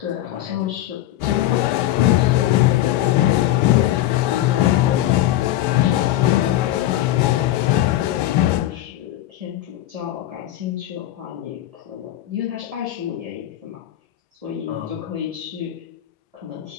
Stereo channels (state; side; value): quieter; right; 13.9 dB